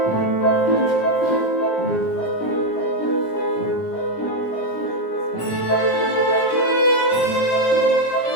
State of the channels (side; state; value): right; late; 17 ms